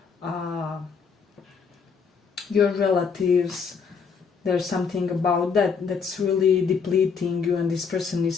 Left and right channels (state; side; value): quieter; right; 5.8 dB